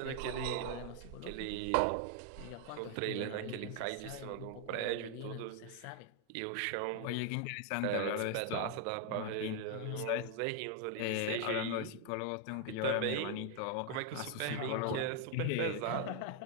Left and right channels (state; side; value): different; both; correlation 0.00